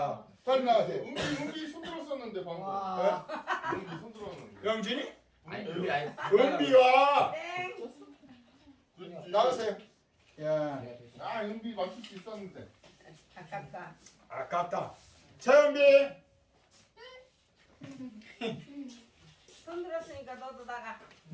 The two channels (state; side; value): identical; both; correlation 1.00